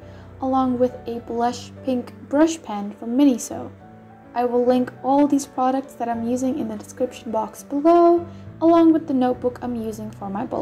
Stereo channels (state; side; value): identical; both; correlation 1.00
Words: along with a blush pink brush pen from Miniso. I will link all these products that I'm using in the description box below, along with the notebook I'm using for my